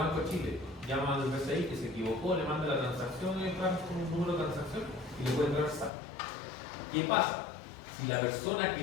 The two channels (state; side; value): drops out; right; at 5.9 s